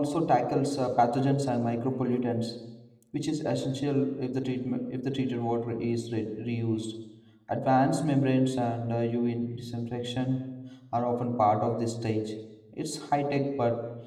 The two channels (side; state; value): both; identical; correlation 1.00